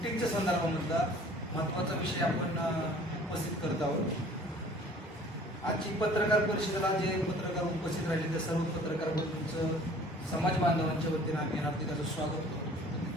संदर्भामधला महत्त्वाचा विषय आपण उपस्थित करत आहोत। आजची पत्रकार परिषदेला जे पत्रकार उपस्थित राहिले त्या सर्व पत्रकार बंधूंचं समाज बांधवांच्या वतीने आम्ही हार्दिक स्वागत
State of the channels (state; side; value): normal; both; correlation 0.50